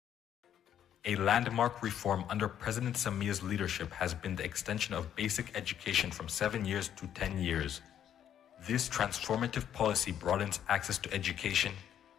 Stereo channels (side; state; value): right; quieter; 9.9 dB